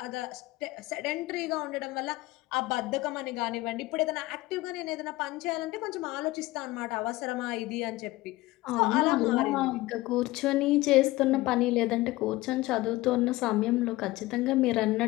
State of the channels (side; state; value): right; quieter; 19.0 dB